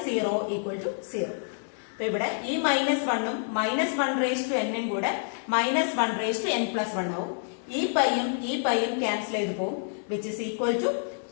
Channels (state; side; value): silent; right; 59 dB below the other